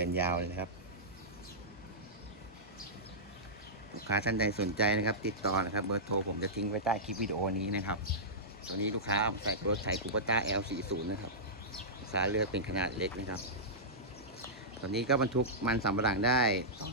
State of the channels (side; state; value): both; normal; correlation -0.14